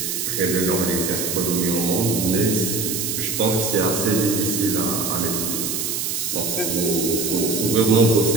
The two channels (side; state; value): right; noise; hiss, 2 dB below the sound